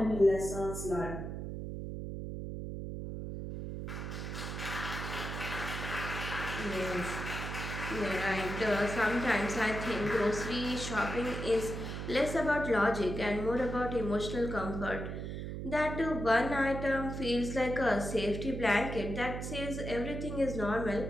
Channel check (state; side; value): noise; right; hum, 6 dB below the sound